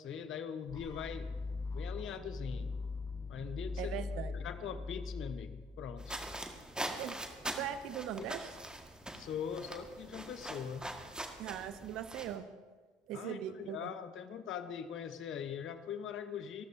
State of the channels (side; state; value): both; normal; correlation 0.57